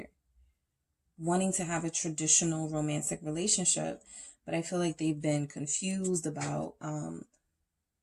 wanting to have a traditional romantic relationship. But I feel like they've been confused about,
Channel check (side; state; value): both; identical; correlation 1.00